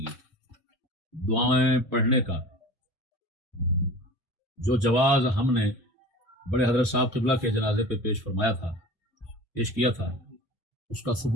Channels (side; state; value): both; normal; correlation 0.38